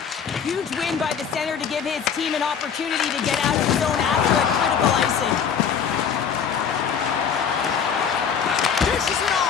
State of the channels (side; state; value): right; quieter; 7.2 dB